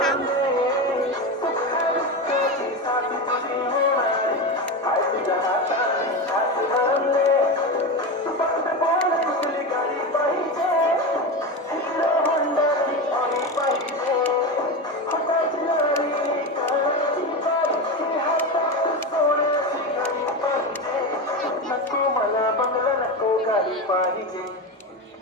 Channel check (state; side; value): normal; both; correlation 0.19